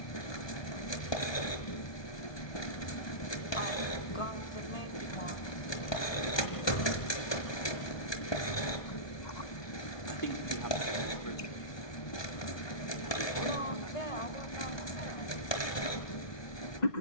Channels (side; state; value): right; late; 1.2 ms